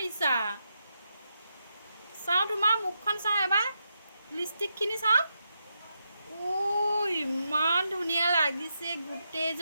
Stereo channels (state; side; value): inverted; both; correlation -0.84